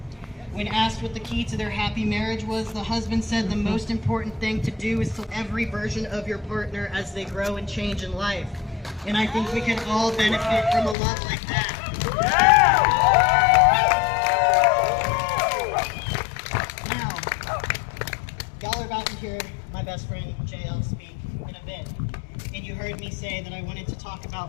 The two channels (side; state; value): right; drops out; at 11.0 s